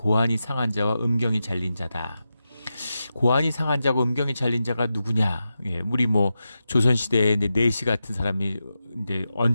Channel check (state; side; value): inverted; both; correlation -0.91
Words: 상한 자와 음경이 잘린 자다. 고안이 상한 자고 음경이 잘린 자가 누구냐? 우리 조선시대에 내시 같은 사람이 이제